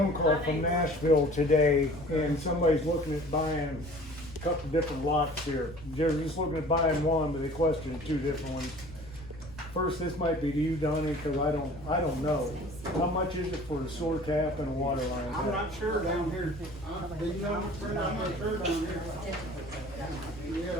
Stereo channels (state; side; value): noise; left; hum, 18 dB below the sound